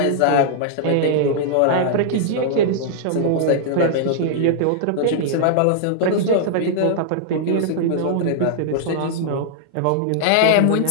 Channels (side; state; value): both; different; correlation -0.01